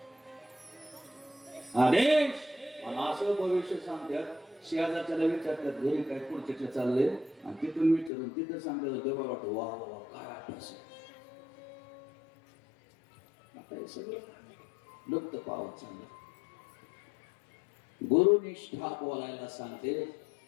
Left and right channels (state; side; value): drops out; right; at 8.1 s